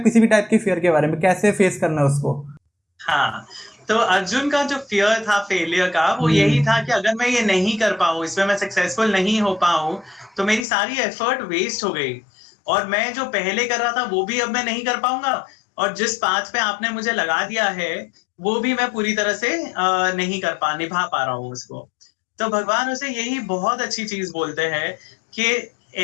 किसी भी टाइप की फियर के बारे में, कैसे फेस करना है उसको। हाँ, तो अर्जुन का जो फियर था फेलियर का, वो यही था कि अगर मैं ये नहीं कर पाऊं, इसमें मैं सक्सेसफुल नहीं हो पाऊं, तो मेरी सारी एफर्ट वेस्ट हो गई, और मैं जो पहले कर रहा था वो भी अब मैं नहीं कर पाऊंगा, और जिस पाथ पे आपने मुझे लगा दिया है वो भी मैं पूरी तरह से नहीं निभा पा रहा हूँ उसको। तो भगवान उसे यही बहुत अच्छी चीज बोलते हैं कि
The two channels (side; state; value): right; drops out; at 10.6 s